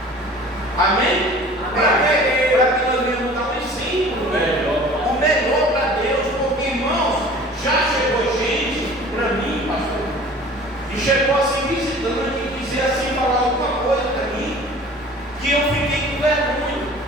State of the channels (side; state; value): both; normal; correlation 0.45